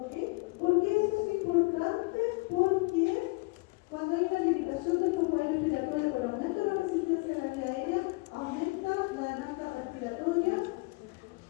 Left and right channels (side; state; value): right; quieter; 26.4 dB